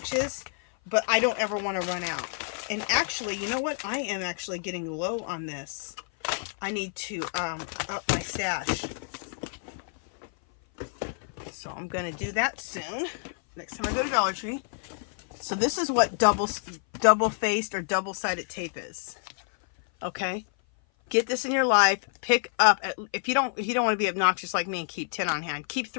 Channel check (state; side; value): silent; right; 56 dB below the other